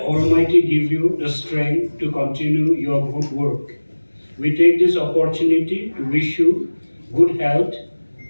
Almighty give you the strength to continue your good work. We take this opportunity to wish you good health,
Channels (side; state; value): both; inverted; correlation -1.00